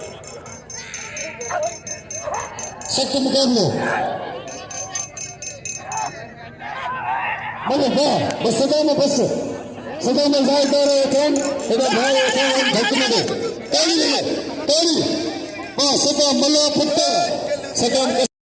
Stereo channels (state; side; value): identical; both; correlation 1.00